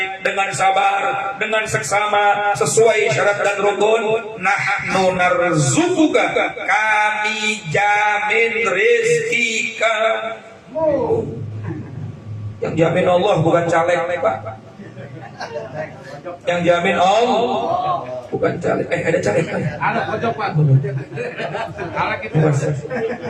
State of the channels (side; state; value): both; identical; correlation 1.00